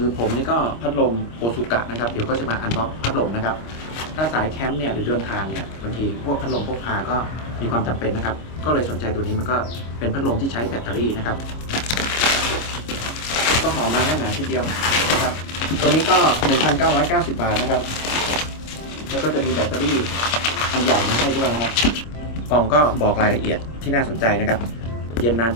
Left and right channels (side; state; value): right; late; 26 ms